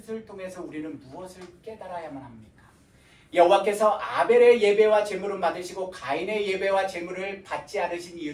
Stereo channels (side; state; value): both; identical; correlation 1.00